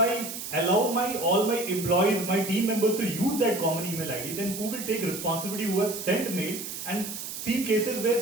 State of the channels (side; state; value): right; noise; hiss, 8 dB below the sound